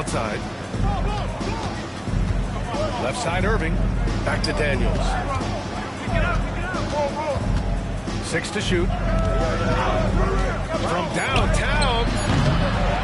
Left side Irving. Back to Daniels. 6 to shoot. From downtown.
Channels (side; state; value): both; identical; correlation 1.00